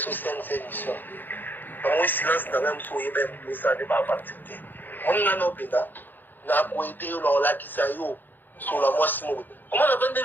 c'est émission. Moi silence dans même soyez bien pour ça de pas participer. On a nos pédas. Na koité on la qui ça yo sur la moi Simon. Comment on appelle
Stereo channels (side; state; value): right; late; 0.091 ms